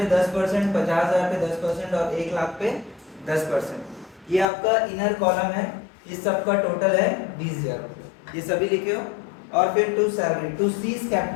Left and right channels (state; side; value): drops out; right; at 4.5 s